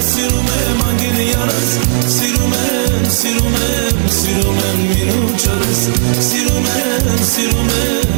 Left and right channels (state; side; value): silent; left; digital silence